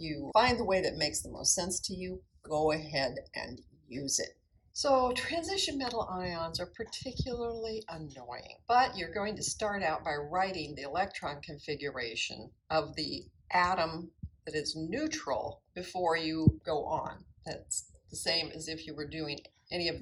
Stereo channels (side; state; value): both; identical; correlation 1.00